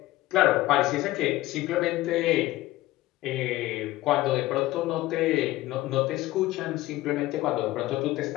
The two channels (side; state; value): right; quieter; 17.2 dB